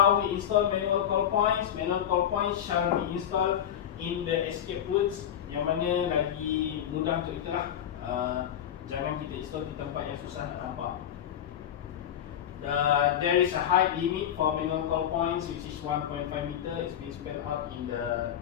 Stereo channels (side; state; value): right; quieter; 10.0 dB